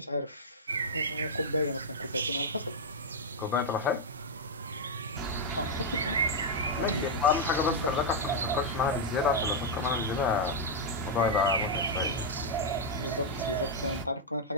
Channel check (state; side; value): normal; both; correlation -0.03